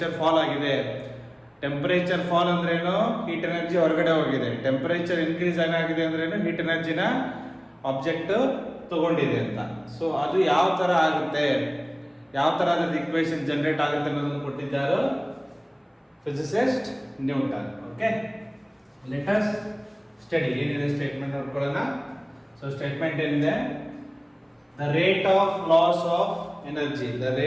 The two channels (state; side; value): identical; both; correlation 1.00